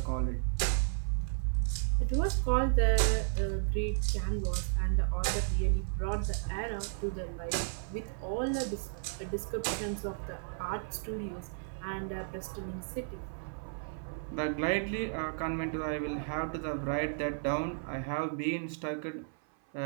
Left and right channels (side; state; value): left; silent; 55 dB below the other